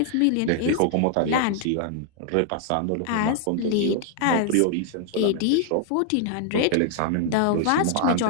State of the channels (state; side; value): different; both; correlation 0.00